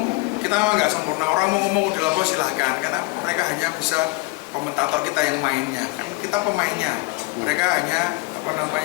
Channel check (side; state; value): right; quieter; 24.3 dB